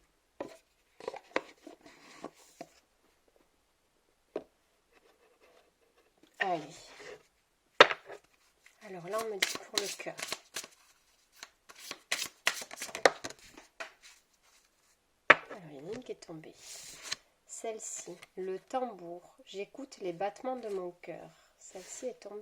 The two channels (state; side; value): identical; both; correlation 1.00